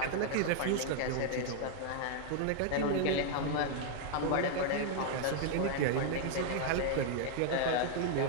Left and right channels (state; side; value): different; both; correlation 0.00